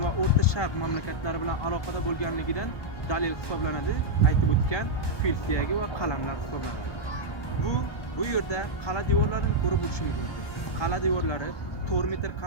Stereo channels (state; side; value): late; right; 1.2 ms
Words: va O'rta Sharq mamlakatlari bilan aloqada bo'lganligidan dalil hisoblanadi. Aytib o'tgan fil suyagi va qalamlar hisoblanadi. Bu yerda qala devorlarini ko'rib o'tishimiz mumkin. Qala devorlari 4 metr